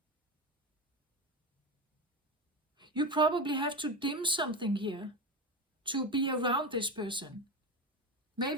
You probably have to dim something here to be around this person.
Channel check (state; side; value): normal; both; correlation 0.19